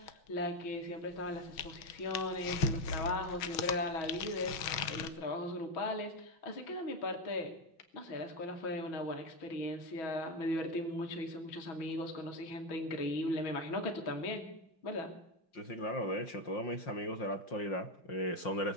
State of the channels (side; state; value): right; late; 6.2 ms